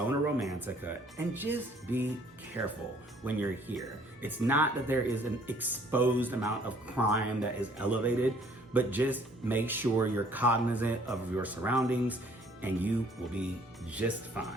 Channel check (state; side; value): normal; both; correlation 0.59